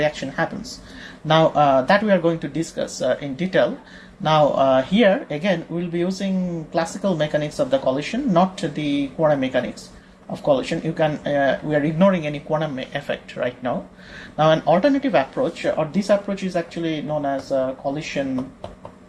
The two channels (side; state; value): both; identical; correlation 1.00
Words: happens. Now that we are going to discuss in detail. Now here again we'll be using classical mechanics of the collision, not the quantum mechanics of collision. You can we are ignoring any quantum effect right now. Now an alternative approach, or this approach is actually known as collision